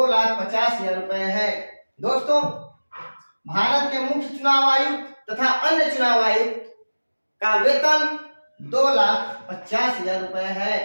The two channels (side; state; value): both; inverted; correlation -1.00